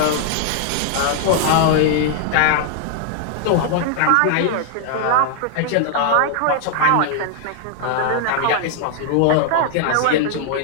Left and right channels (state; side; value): different; both; correlation 0.00